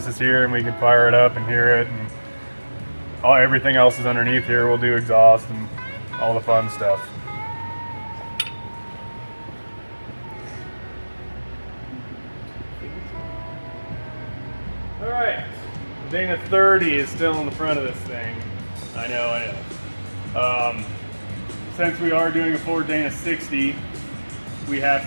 is here and we can fire it up and hear it, and everything else is underneath here, we'll do exhaust and all the fun stuff. All right, Dana 30 is still in the front of this thing. I know. Since we are doing a Ford Dana 60, we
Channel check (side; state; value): both; inverted; correlation -1.00